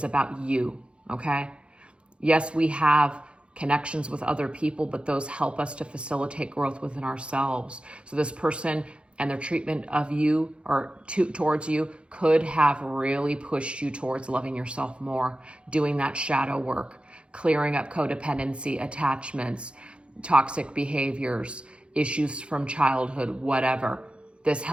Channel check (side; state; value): left; late; 0.057 ms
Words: about you, okay? Yes, we have connections with other people, but those help us to facilitate growth within ourselves. So this person and their treatment of you or towards you could have really pushed you towards loving yourself more, doing that shadow work, clearing up codependency, attachments, toxic behaviors, issues from childhood, whatever. This